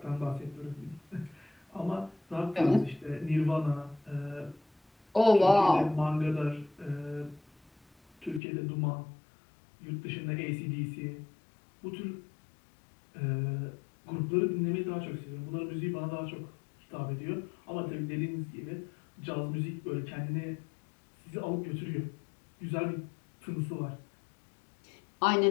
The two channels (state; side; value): drops out; right; at 8.4 s